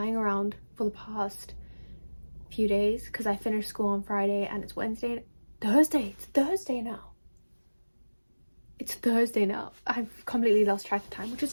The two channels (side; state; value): both; inverted; correlation -1.00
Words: around for the past few days because I finished school on Friday and it's Thursday now. It's Thursday now. I've completely lost track of time, which is